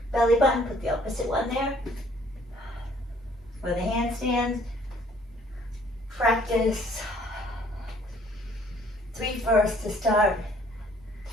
belly button, put the opposite one there. For the handstands, practice 3 first to start.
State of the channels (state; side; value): normal; both; correlation 0.59